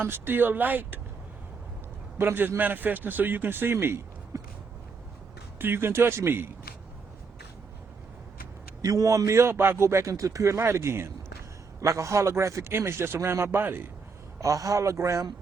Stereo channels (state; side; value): quieter; left; 4.9 dB